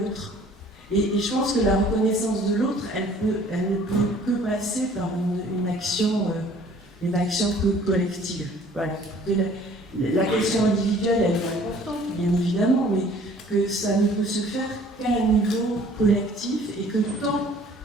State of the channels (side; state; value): both; normal; correlation 0.54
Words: Et je pense que la reconnaissance de l'autre, elle ne peut que passer par une action collective. Voilà. La question individuelle, elle est importante, bien évidemment, mais que ça ne peut se faire qu'à un niveau collectif, et que tant